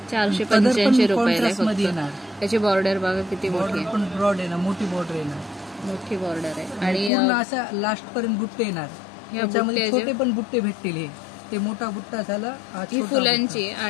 485 रुपयाला येणार। त्याची बॉर्डर बघा किती मोठी आहे, पण ब्रॉड आहे ना, मोठी बॉर्डर आहे ना, मोठी बॉर्डर आहे आणि पूर्ण असा लास्ट पर्यंत बुट्टे येणार। याच्यामध्ये छोटे पण बुट्टे भेटतील। हे ते मोठा बुट्टा झाला, ही फुलांची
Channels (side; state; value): right; drops out; at 7.1 s